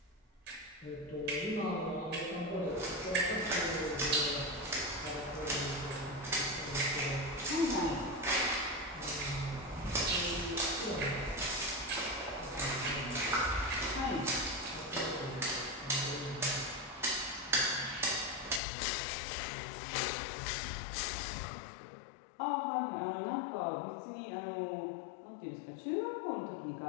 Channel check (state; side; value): drops out; right; at 18.6 s